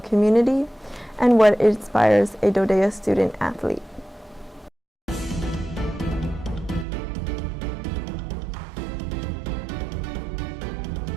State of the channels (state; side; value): drops out; left; at 6.9 s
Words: community, and what inspires a DoDEA student athlete.